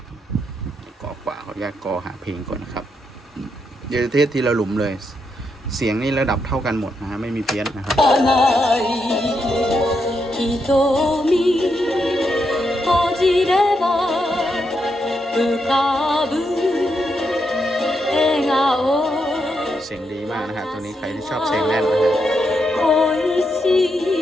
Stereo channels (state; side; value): normal; both; correlation 0.81